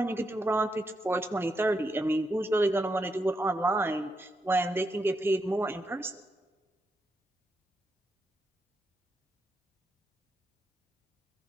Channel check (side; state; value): both; normal; correlation 0.83